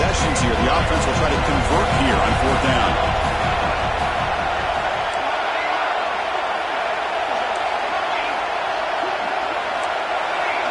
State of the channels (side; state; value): both; identical; correlation 1.00